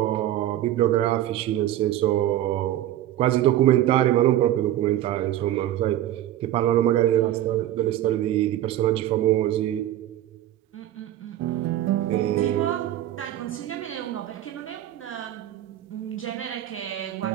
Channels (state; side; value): quieter; left; 13.0 dB